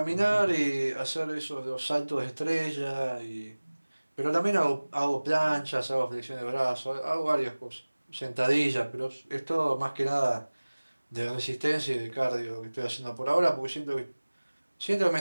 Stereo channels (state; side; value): inverted; both; correlation -1.00